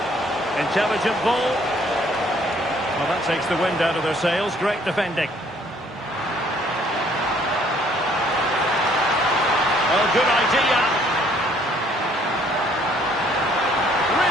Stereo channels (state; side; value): normal; both; correlation 0.62